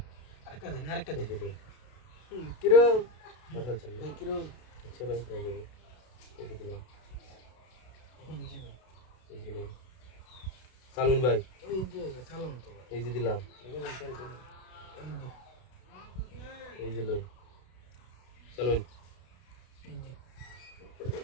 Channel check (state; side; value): late; right; 32 ms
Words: আরেকটা দিন আরেকটা এই দিন যে নেন কিরো পাঠালছেন না ভাই কিরো আচ্ছা ভাই হয়ে যাবে এই যে দিলাম এই যে ভাই এই যে নেন সালুন ভাই এই যে সালাম তো ভাই এই যে দিলাম এই যে এই যে লোন সালুন এই যে